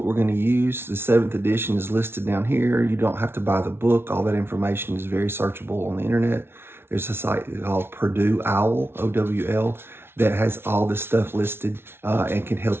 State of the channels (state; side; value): late; left; 0.12 ms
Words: we're going to use. The 7th edition is listed down here. You don't have to buy the book. All that information is very searchable on the internet. There's a site called Purdue Owl, OWL, that has all this stuff listed and can